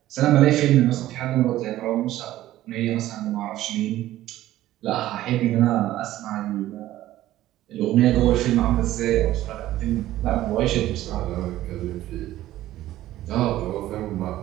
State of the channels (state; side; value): quieter; left; 14.5 dB